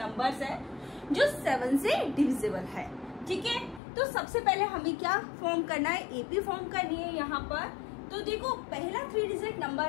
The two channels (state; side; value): drops out; right; at 3.8 s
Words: है जो 7 से डिविजिबल है। ठीक है, तो सबसे पहले हमें क्या फॉर्म करना है, एपी फॉर्म करनी है यहाँ पर। तो देखो पहला 3 डिजिट